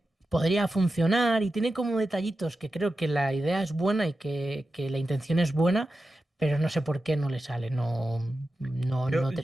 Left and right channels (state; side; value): normal; both; correlation 0.92